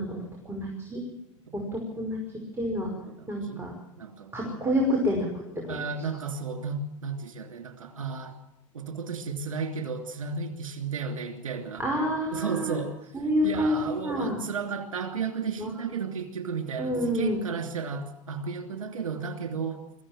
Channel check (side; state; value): both; normal; correlation 0.20